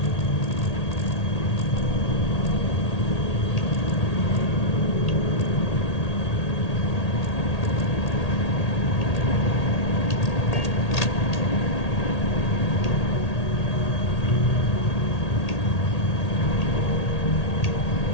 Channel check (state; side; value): late; right; 1.8 ms